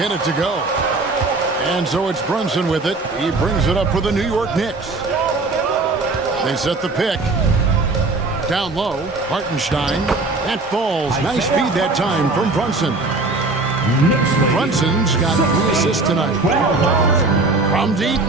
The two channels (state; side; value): quieter; left; 3.4 dB